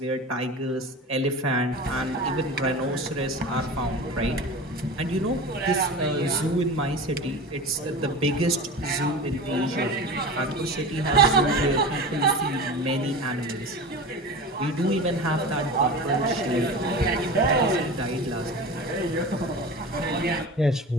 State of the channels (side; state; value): both; normal; correlation 0.31